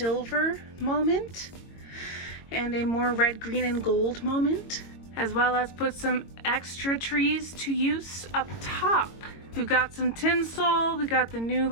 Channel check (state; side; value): late; right; 22 ms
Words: moment and a more red, green, and gold moment, as well as put some extra trees to use up top. We've got some tinsel, we got the new